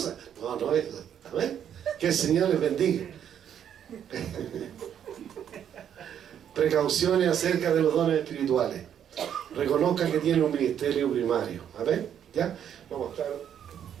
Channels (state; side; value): quieter; left; 9.2 dB